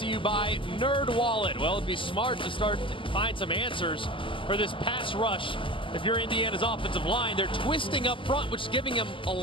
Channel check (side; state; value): right; late; 0.25 ms